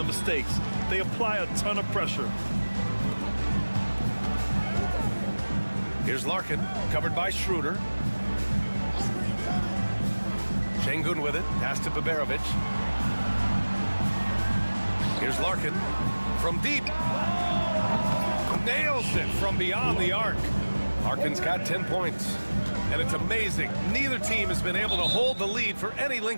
mistakes. They apply a ton of pressure. Here's Larkin, covered by Schroeder. Şengün with it, pass to Baberovic. Here's Larkin from deep. Nails it from beyond the arc. Larkin's got 10 points. And it's amazing, neither team has been able to hold the lead for any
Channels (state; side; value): inverted; both; correlation -1.00